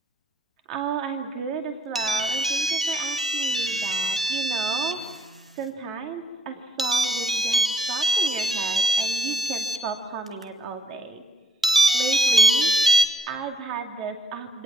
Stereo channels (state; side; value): normal; both; correlation 0.66